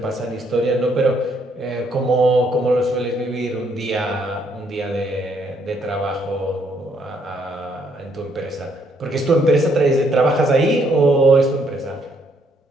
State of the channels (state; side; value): normal; both; correlation 0.70